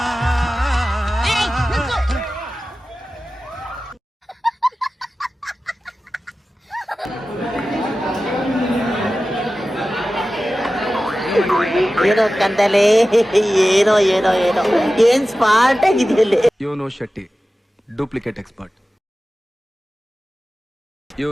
ಏನೋ ಕಂದಲೆ, ಏನೋ ಏನೋ ಏನೋ ಏನ್ ಸ್ಮಾರ್ಟ್ ಆಗಿದೆಯಲ್ಲ. ಇವನು ಶೆಟ್ಟಿ, ಡೂಪ್ಲಿಕೇಟ್ ಎಕ್ಸ್ಪರ್ಟ್.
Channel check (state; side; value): normal; both; correlation 0.95